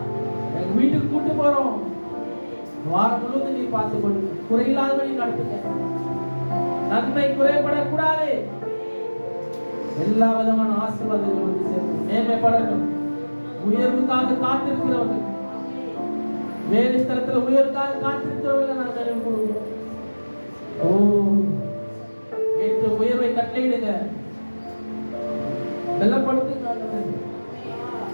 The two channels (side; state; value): both; inverted; correlation -1.00